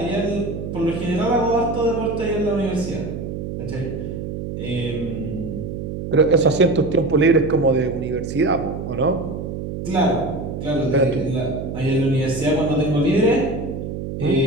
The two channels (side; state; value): right; noise; hum, 6 dB below the sound